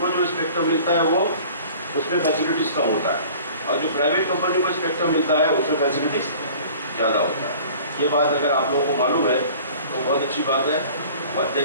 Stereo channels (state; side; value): inverted; both; correlation -0.46